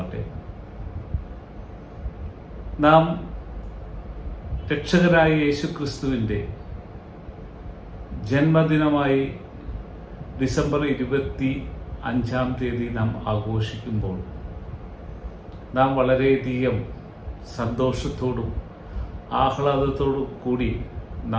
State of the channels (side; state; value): both; identical; correlation 1.00